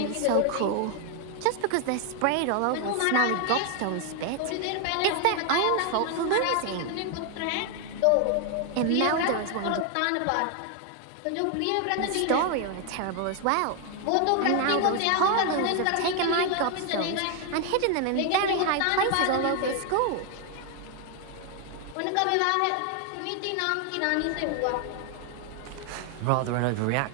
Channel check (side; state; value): both; different; correlation 0.01